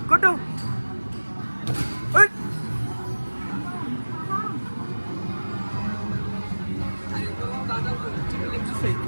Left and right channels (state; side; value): inverted; both; correlation -1.00